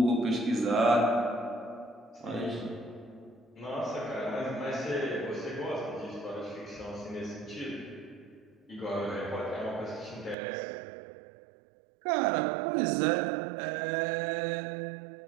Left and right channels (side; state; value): left; drops out; at 10.4 s